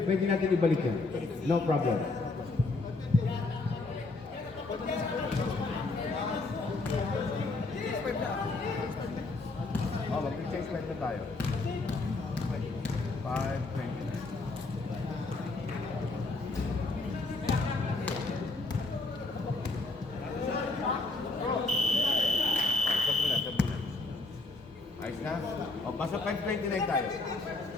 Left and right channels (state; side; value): quieter; right; 3.4 dB